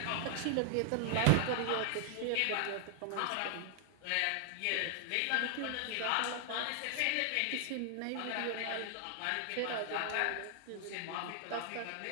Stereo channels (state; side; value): different; both; correlation 0.00